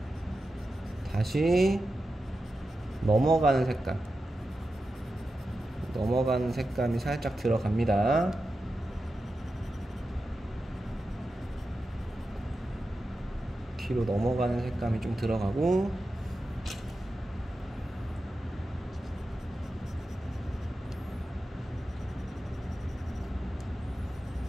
다시 넘어가는 색감이 살짝 들어갑니다. 뒤로 넘어가는 색감이 좀 들어가고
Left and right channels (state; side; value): normal; both; correlation 0.91